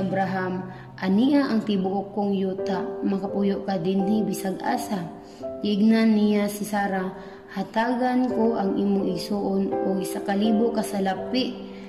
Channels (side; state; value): both; identical; correlation 1.00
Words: ania ang tibuok kong yuta, makapuyo ka dinhi bisag asa. Giingnan niya si Sarah, hatagan ko ang imong igsuon o 1,000 ka salapi